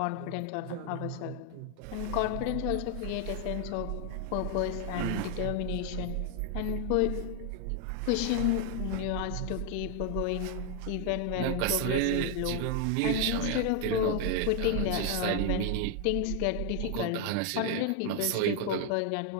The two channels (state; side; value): different; both; correlation 0.00